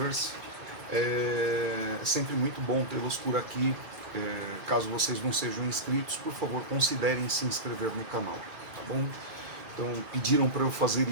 É sempre muito bom tê-los por aqui. Caso vocês não sejam inscritos, por favor considerem se inscrever no canal, tá bom? Então pediram para eu fazer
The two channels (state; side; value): late; left; 2.3 ms